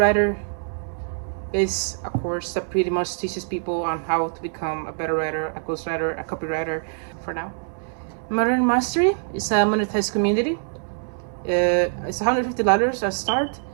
is a course that pretty much teaches people on how to become a better writer, a ghostwriter, a copywriter for now. Modern Mastery is a monetized community. It's $150 at start,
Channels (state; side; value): silent; left; 63 dB below the other